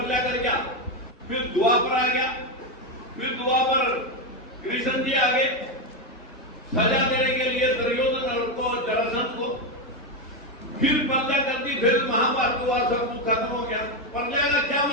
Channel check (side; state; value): both; normal; correlation 0.09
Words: कर गया। फिर द्वापर आ गया, फिर द्वापर कृष्ण जी आ गए सजा देने के लिए दुर्योधन को जरासंध को। फिर प्रलय कर दी, फिर महाभारत हुआ, सब कुछ खत्म हो गया। प्रलय का क्या